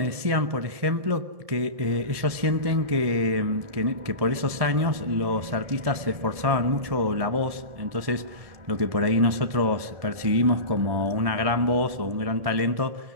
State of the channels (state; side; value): late; left; 1.7 ms